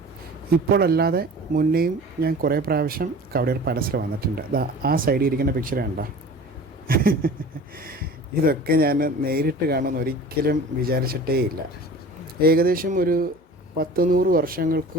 ഇപ്പോഴല്ലാതെ മുന്നേയും ഞാൻ കുറേ പ്രാവശ്യം കവടിയാർ പാലസിൽ വന്നിട്ടുണ്ട്. ആ സൈഡിൽ ഇരിക്കുന്ന പിക്ചർ കണ്ടോ? ഇതൊക്കെ ഞാൻ നേരിട്ട് കാണുമെന്ന് ഒരിക്കലും വിചാരിച്ചിട്ടേ ഇല്ല. ഏകദേശം ഒരു 100 വർഷങ്ങൾക്ക്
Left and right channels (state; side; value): normal; both; correlation 0.41